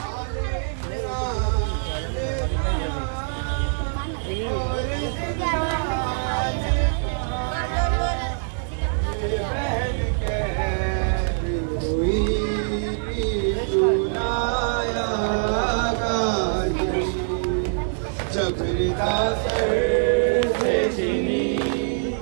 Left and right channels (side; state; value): left; silent; digital silence